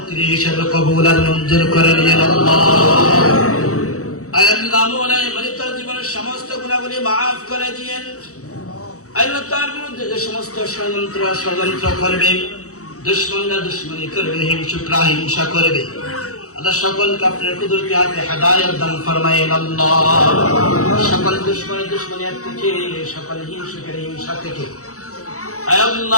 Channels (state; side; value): late; right; 0.65 ms